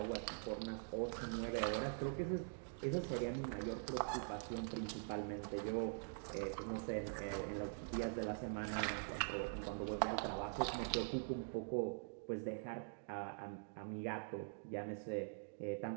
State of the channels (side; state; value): left; silent; digital silence